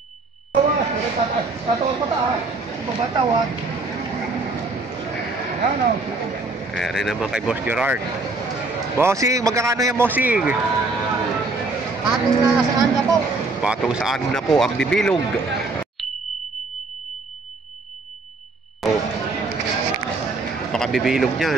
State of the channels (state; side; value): quieter; left; 3.5 dB